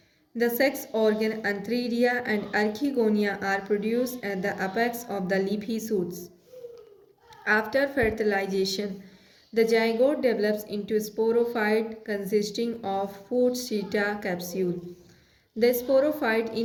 the sex organ antheridia and archegonia are produced at the apex of the leafy shoots. After fertilization, the zygote develops into a sporophyte consisting of foot seta capsule. The sporophyte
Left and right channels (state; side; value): identical; both; correlation 1.00